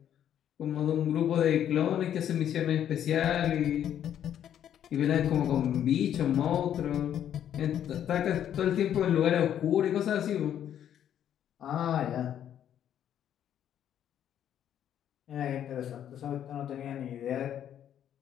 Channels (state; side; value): quieter; right; 10.1 dB